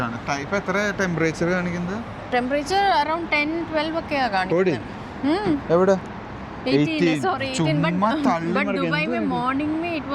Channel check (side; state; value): both; identical; correlation 1.00